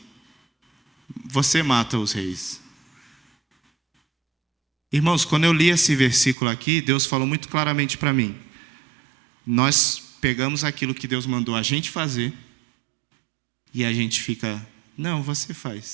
você mata os reis. Irmãos, quando eu li esse versículo aqui, Deus falou muito claramente para mim. Nós pegamos aquilo que Deus mandou a gente fazer, e a gente fica, não, você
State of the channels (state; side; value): drops out; left; at 6.4 s